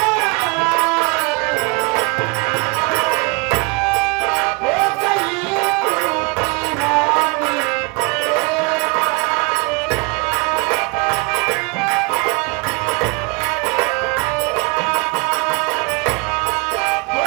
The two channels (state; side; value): quieter; left; 29.6 dB